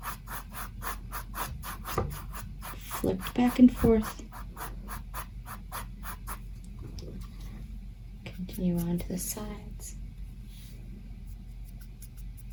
Flipped back and forth. Continue on to the sides.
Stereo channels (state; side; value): identical; both; correlation 1.00